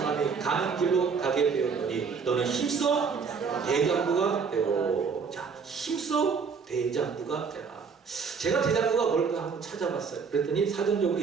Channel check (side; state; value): left; quieter; 5.6 dB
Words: 가는 길로 가게 되었노니 너는 힘써 대장부가 되고. 자, 힘써 대장부가 되라. 제가 대장부가 뭘까 한번 찾아봤어요. 그랬더니 사전적으로